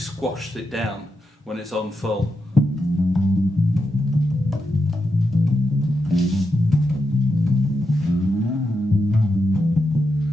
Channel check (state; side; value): normal; both; correlation 0.86